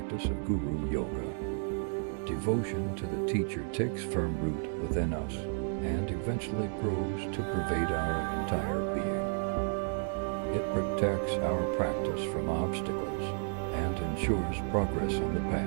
of Guru Yoga. Devotion to the teacher takes firm root within us and eventually grows to pervade our entire being. It protects our practice from obstacles and ensures progress on the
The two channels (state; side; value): silent; left; 56 dB below the other